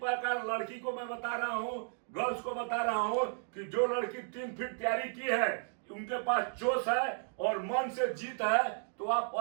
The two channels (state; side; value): silent; left; 55 dB below the other